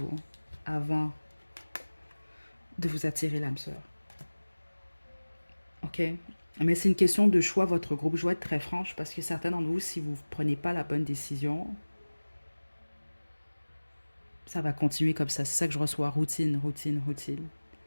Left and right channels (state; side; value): inverted; both; correlation -1.00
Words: avant de vous attirer l'âme sœur. OK? Mais c'est une question de choix, votre groupe. Je dois être très franche parce que certains d'entre vous, si vous ne prenez pas la bonne décision, ça va continuer comme ça. C'est ça que je reçois. Routine, routine, routine.